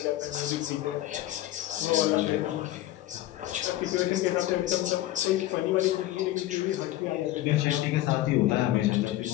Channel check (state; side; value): quieter; right; 14.9 dB